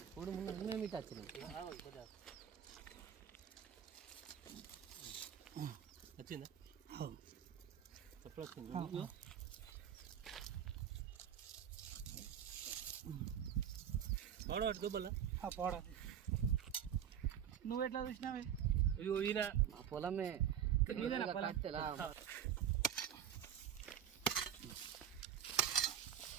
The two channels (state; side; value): quieter; left; 9.3 dB